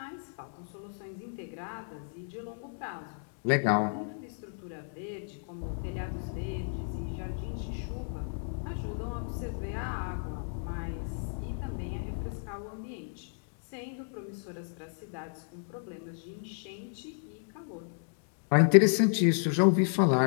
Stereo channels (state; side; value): silent; right; digital silence